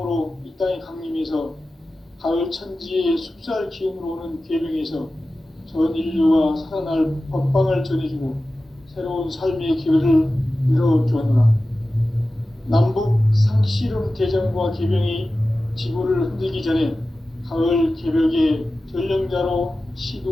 이 땅에 강림해서 가을 천지의 숲살 기운으로 오는 계명에서 전 인류가 살아날 법방을 전해주고 새로운 삶의 기회를 이뤄주었노라. 남북 상씨름 대전과 계명이 지구를 흔들기 전에 가을 개벽의 전령자로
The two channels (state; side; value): normal; both; correlation 0.95